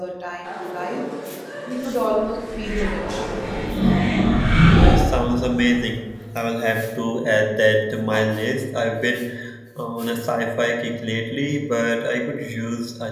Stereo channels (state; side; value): identical; both; correlation 1.00